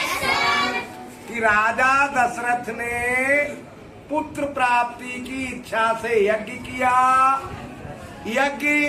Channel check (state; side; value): identical; both; correlation 1.00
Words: कि राजा दशरथ ने पुत्र प्राप्ति की इच्छा से यज्ञ किया। यज्ञ